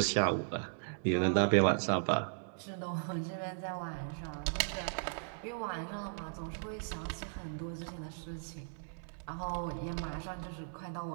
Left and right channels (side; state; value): left; silent; digital silence